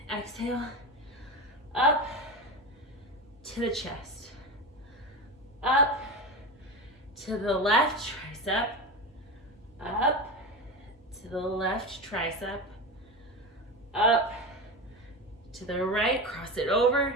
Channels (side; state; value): both; normal; correlation 0.23